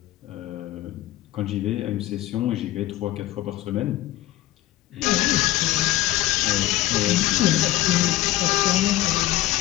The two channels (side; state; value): right; quieter; 15.4 dB